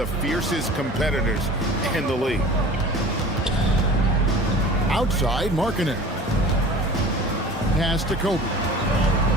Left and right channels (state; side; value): normal; both; correlation 0.41